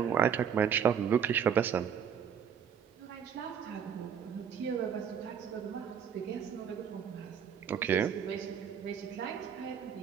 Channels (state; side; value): quieter; left; 7.8 dB